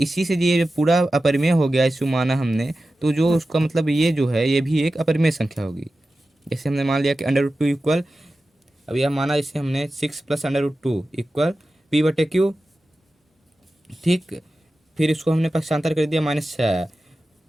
से ये जब पूरा अपरिमेय हो गया, इसको माना हमने, तो जो उसका मतलब ये जो है ये भी एक अपरिमेय संख्या होगी। जैसे हमने मान लिया कि अंडर रूट 2 इक्वल, अब यह माना इसे हमने 6 plus under root 2 equal p बटे क्यू, ठीक। फिर इसको हमने पक्षांतर कर दिया -6,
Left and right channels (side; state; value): both; normal; correlation 0.94